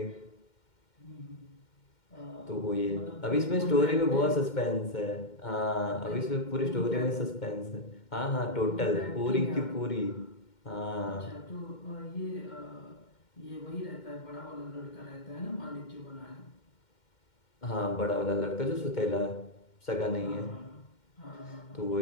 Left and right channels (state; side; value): late; right; 2.1 ms